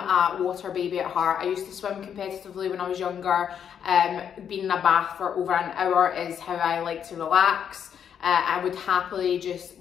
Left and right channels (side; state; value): right; quieter; 8.3 dB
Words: a water baby at heart. I used to swim competitively when I was younger. Being in a bath for over an hour is how I like to relax. I would happily just